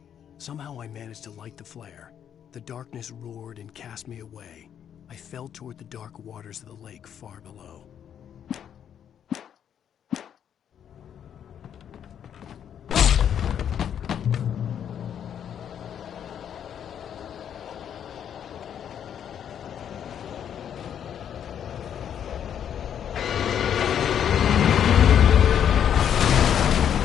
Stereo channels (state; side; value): quieter; right; 9.0 dB